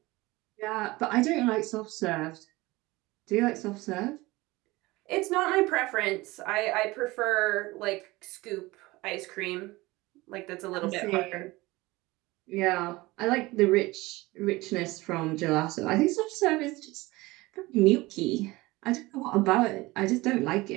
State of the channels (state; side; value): quieter; left; 21.0 dB